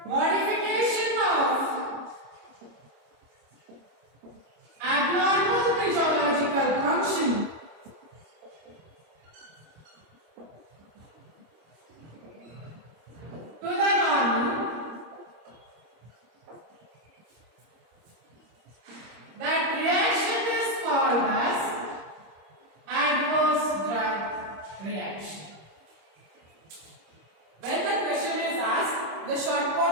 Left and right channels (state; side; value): late; left; 26 ms